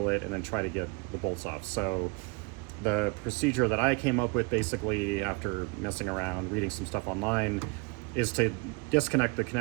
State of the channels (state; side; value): quieter; left; 29.7 dB